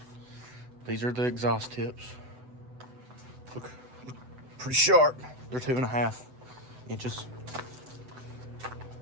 these are the exhaust tips. Look pretty sharp. They're 2.5 inches.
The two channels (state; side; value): late; left; 7.8 ms